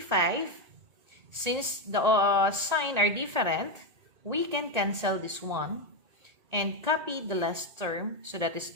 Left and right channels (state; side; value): late; left; 1.8 ms